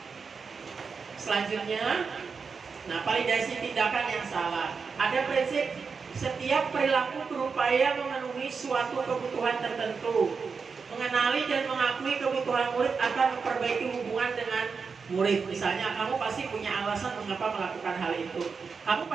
Selanjutnya, nah, validasi tindakan yang salah. Ada prinsip setiap perilaku berupaya memenuhi suatu kebutuhan tertentu. Mengenali dan mengakui kebutuhan murid akan memperbaiki hubungan dengan murid. Misalnya kamu pasti punya alasan mengapa melakukan hal itu. Kamu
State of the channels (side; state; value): left; quieter; 5.3 dB